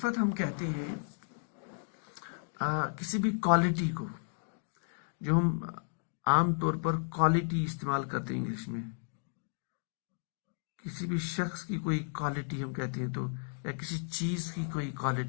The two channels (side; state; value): right; silent; digital silence